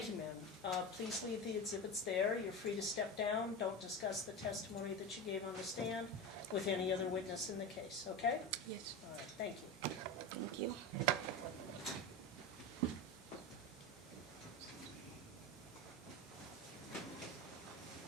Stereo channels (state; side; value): normal; both; correlation 0.23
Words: you, ma'am. Please leave the exhibits there. You're free to step down. Don't discuss the testimony that you gave on the stand with any other witness in the case, okay? Yes, All right, thank you. thank you. Okay.